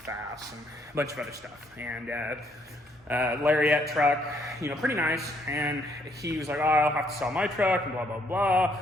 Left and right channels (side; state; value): both; normal; correlation 0.70